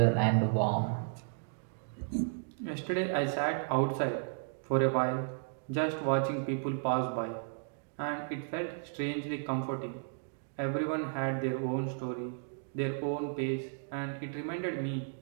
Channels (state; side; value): silent; left; digital silence